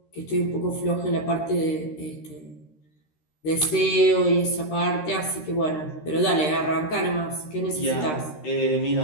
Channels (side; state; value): right; late; 13 ms